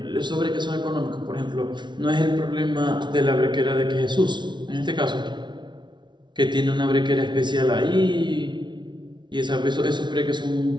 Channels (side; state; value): left; late; 0.22 ms